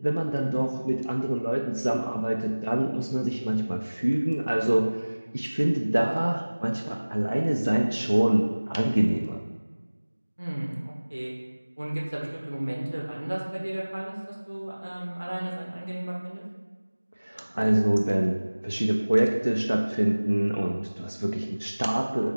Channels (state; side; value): inverted; both; correlation -1.00